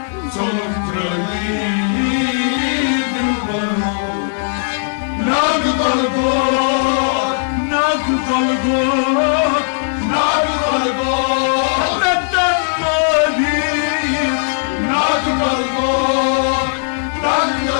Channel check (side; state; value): right; silent; digital silence